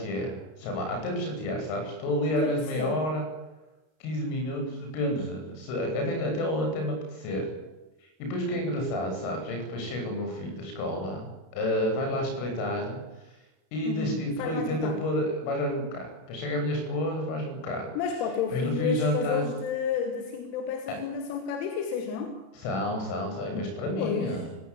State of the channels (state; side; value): late; right; 32 ms